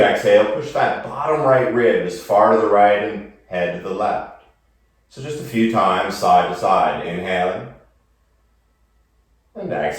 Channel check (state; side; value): identical; both; correlation 1.00